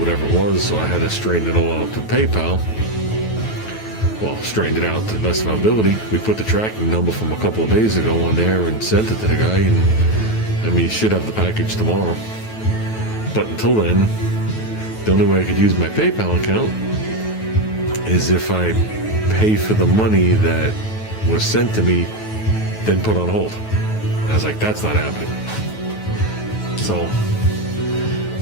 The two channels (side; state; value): right; late; 9.2 ms